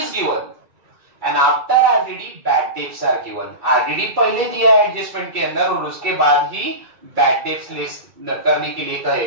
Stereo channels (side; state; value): left; late; 2.3 ms